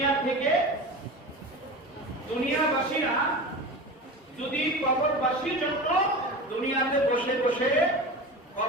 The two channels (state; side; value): normal; both; correlation 0.29